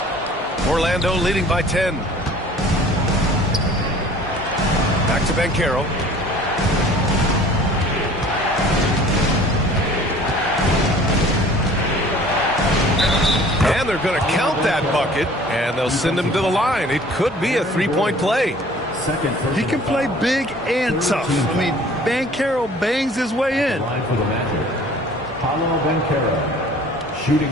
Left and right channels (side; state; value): both; normal; correlation 0.49